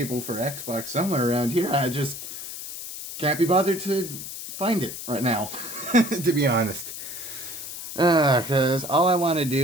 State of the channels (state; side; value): noise; left; hiss, 9 dB below the sound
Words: for Xbox somewhere around here. I just can't be bothered to find it right now, to be honest. Because all I want to